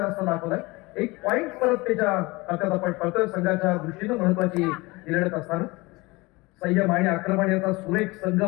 रस्ता दाखवलाय. एक पॉईंट परत त्याच्या खात्यात आपण पडतोय. संघाच्या दृष्टीनं महत्वाची लढत असताना संयम आणि आक्रमण याचा सुरेख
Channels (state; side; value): quieter; right; 23.3 dB